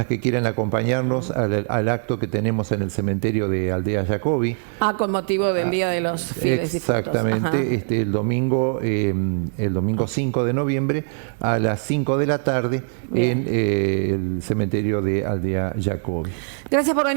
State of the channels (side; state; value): left; silent; 64 dB below the other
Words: que quieran acompañarnos al acto que tenemos en el cementerio de Aldea Jacobi. Con motivo del Día de los Fieles. Exactamente, el domingo 5 de noviembre a las 5 de la tarde. Bien. En el cementerio de Aldea Jacobi. Gracias por